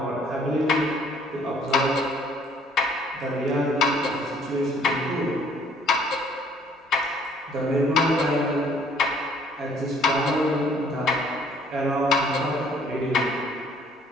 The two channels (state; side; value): normal; both; correlation 0.60